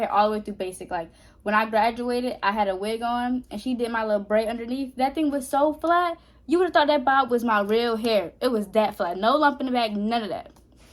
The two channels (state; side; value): identical; both; correlation 1.00